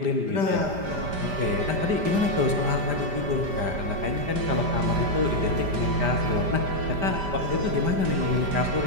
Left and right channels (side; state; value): left; late; 5.0 ms